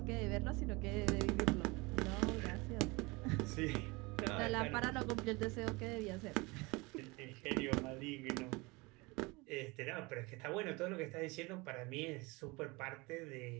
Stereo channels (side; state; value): left; quieter; 25.0 dB